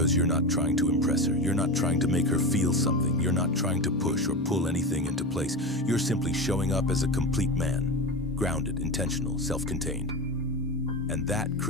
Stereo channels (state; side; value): normal; both; correlation 0.24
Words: you're not trying to impress her, you're not trying to make her feel something, you're not trying to push or pull anything into place. You're simply showing up as a complete man, grounded, intentional, self-contained. And that